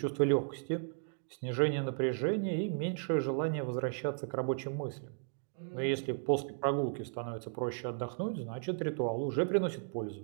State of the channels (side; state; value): left; silent; digital silence